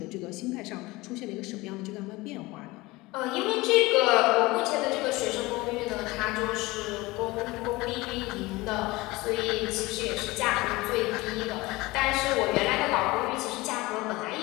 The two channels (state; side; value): quieter; right; 21.3 dB